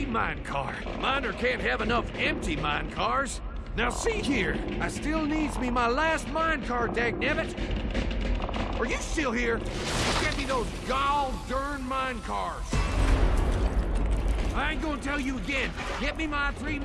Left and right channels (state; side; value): identical; both; correlation 1.00